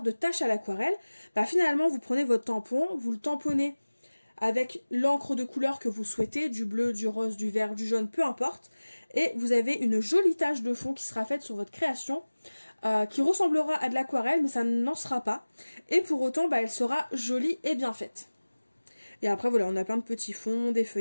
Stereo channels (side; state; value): both; inverted; correlation -1.00